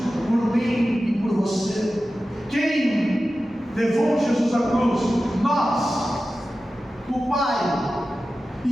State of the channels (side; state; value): both; normal; correlation 0.94